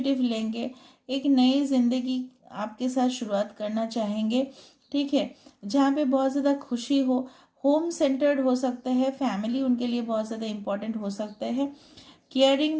लेंगे, एक नई ज़िंदगी आपके साथ शुरुआत करना चाहेंगे, ठीक है, जहाँ पे बहुत ज़्यादा खुशी हो, होम सेंटर्ड हो सकते हैं, फैमिली उनके लिए बहुत ज़्यादा इम्पोर्टेंट हो सकते हैं, केयरिंग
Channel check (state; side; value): identical; both; correlation 1.00